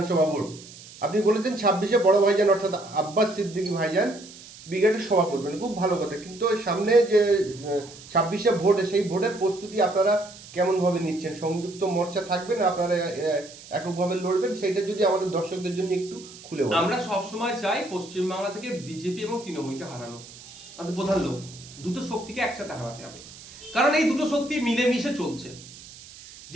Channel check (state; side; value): noise; right; hiss, 18 dB below the sound